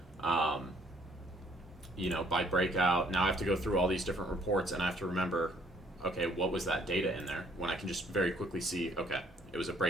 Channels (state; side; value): normal; both; correlation 0.63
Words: By breakout, now I have to go through all these different reports and I have to remember, okay, what was that data in there? When I can just very quickly see, okay, it was a